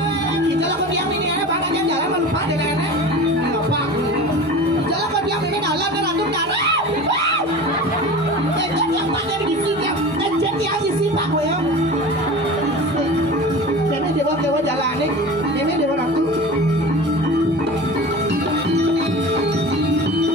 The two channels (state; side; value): normal; both; correlation 0.35